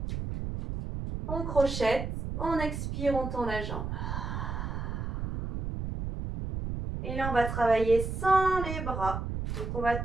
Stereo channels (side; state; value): right; noise; rumble, 4 dB below the sound